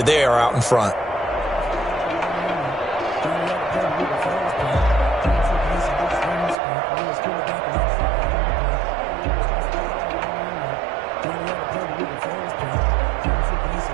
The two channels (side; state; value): left; drops out; at 6.6 s